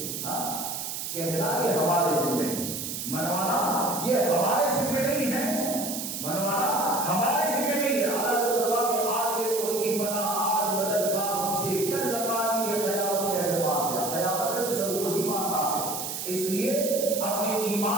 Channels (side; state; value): right; noise; hiss, 5 dB below the sound